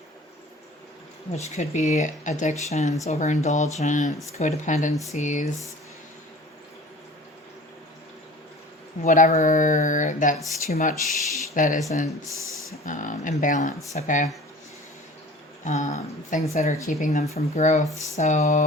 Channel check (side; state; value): both; normal; correlation 0.43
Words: which could be addictions, overindulgence, codependencies, whatever that's too much that isn't imbalanced, okay? Things that are keeping them from growth.